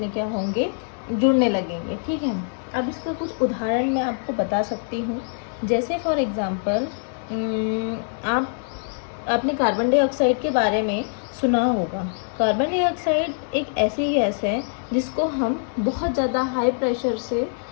क्या होंगे, जुड़ने लगेंगे, ठीक है। अब इसका कुछ उदाहरण मैं आपको बता सकती हूँ। जैसे फॉर एग्ज़ाम्पल आप आपने कार्बन डाइऑक्साइड के बारे में सुना होगा। कार्बन डाइऑक्साइड एक ऐसी गैस है जिसको हम बहुत ज़्यादा हाई प्रेशर से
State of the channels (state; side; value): silent; right; digital silence